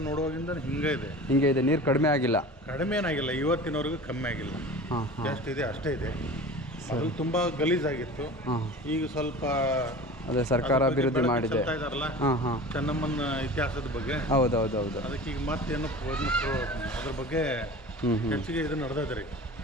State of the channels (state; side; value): normal; both; correlation 0.37